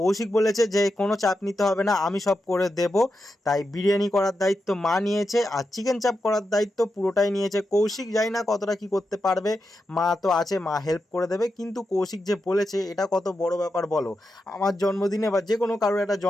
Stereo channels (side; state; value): both; normal; correlation 0.88